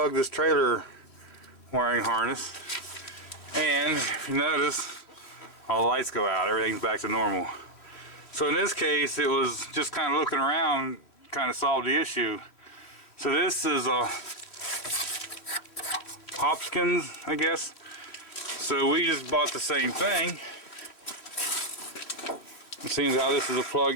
this trailer wiring harness, and if you notice, all the lights go out, everything's back to normal. So in this case, it was just kind of looking around, kind of solved the issue. So this is a Hopkins, I guess. So we just bought the same thing. It seems how this is a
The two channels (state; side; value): late; right; 3.2 ms